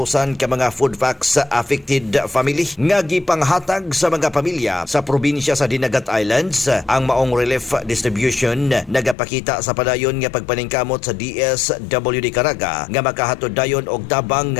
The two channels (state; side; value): drops out; right; at 9.2 s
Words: ka mga food packs sa affected family nga gipanghatag sa mga pamilya sa probinsya sa Dinagat Islands. Ang maong relief distribution nagapakita sa padayon nga pagpaningkamot sa DSWD Caraga nga makahatod dayon og tabang